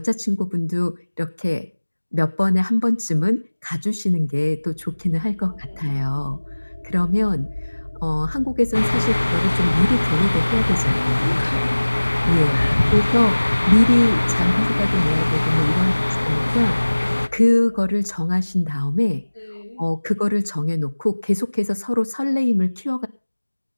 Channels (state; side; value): inverted; both; correlation -1.00